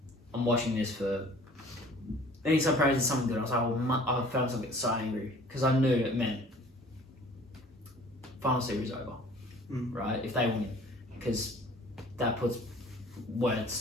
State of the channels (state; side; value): normal; both; correlation 0.50